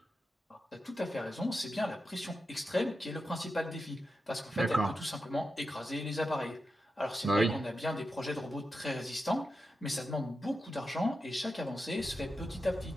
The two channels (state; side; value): normal; both; correlation 0.89